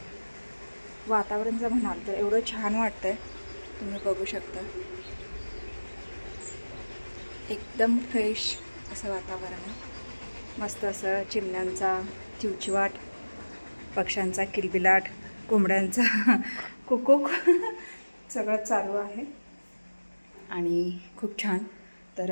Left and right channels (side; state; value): both; inverted; correlation -1.00